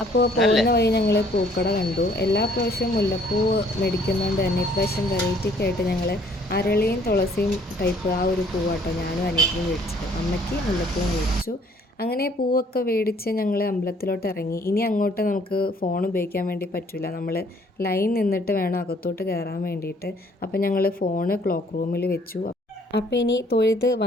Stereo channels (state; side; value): normal; both; correlation 0.60